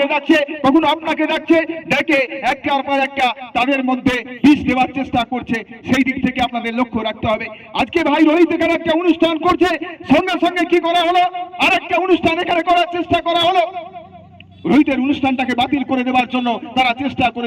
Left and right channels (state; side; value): identical; both; correlation 1.00